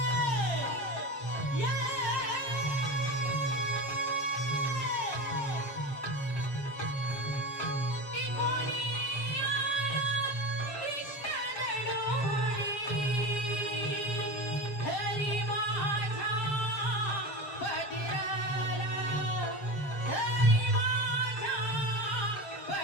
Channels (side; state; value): right; late; 7.0 ms